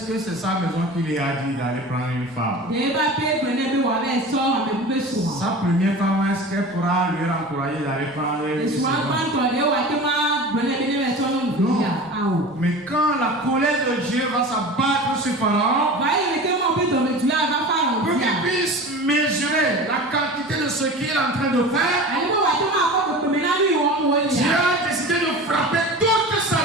que c'est sa maison qui lui a dit d'aller prendre une femme? Sa première femme, est-ce qu'elle pourra lui encourager d'aller prendre une femme? Non. Mais quand la colère de Dieu va s'abattre sur Pharaon, pour qu'il puisse mesurer la quantité de ce qu'il est en train de faire, Dieu a décidé de frapper toute sa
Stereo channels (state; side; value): normal; both; correlation 0.35